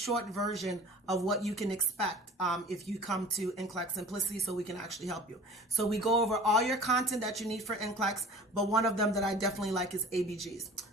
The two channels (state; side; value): normal; both; correlation 0.43